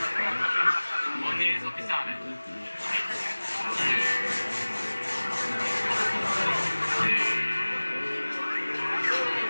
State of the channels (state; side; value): inverted; both; correlation -1.00